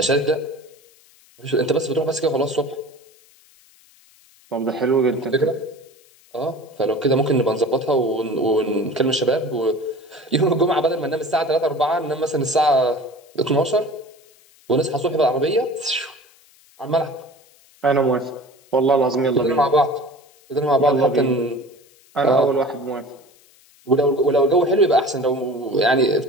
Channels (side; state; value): left; noise; hiss, 29 dB below the sound